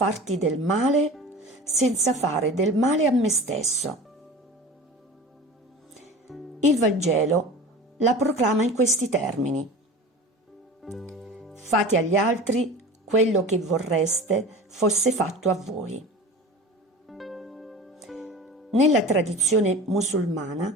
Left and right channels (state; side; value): normal; both; correlation 0.35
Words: del male senza fare del male a me stesso». Il Vangelo la proclama in questi termini: «Fate agli altri quello che vorreste fosse fatto a voi». Nella tradizione musulmana